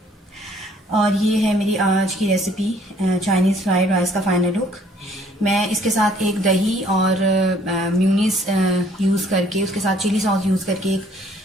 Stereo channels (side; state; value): both; normal; correlation 0.60